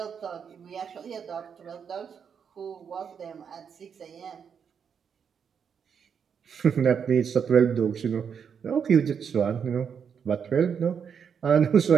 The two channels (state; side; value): quieter; left; 7.1 dB